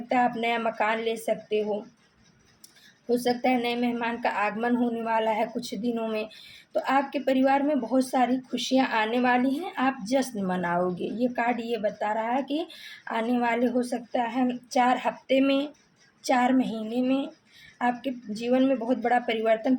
है आप नया मकान ले सकते हो सकता है नए मेहमान का आगमन होने वाला है कुछ दिनों में। तो आपके परिवार में बहुत सारी खुशियाँ आने वाली हैं, आप जश्न मनाओगे। ये कार्ड ये बता रहा है कि आने वाले हो सकता है 4 हफ्ते में, 4 महीने में आपके जीवन में बहुत बड़ा परिवर्तन,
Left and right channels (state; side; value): identical; both; correlation 1.00